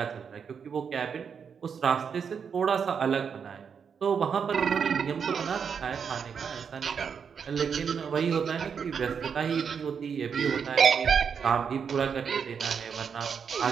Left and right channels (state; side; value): quieter; left; 6.7 dB